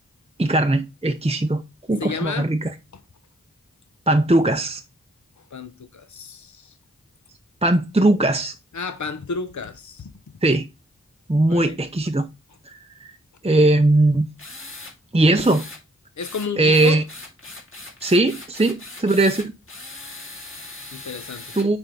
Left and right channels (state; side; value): normal; both; correlation 0.66